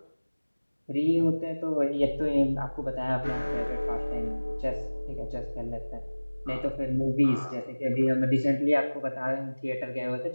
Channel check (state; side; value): inverted; both; correlation -1.00